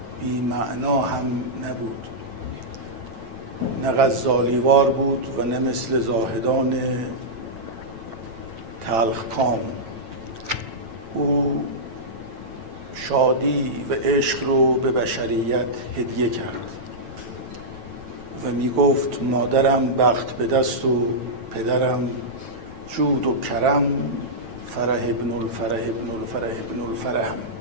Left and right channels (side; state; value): left; late; 9.1 ms